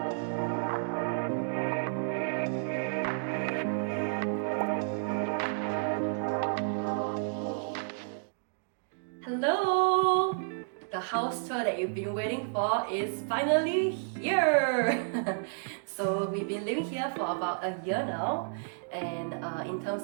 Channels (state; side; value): silent; left; digital silence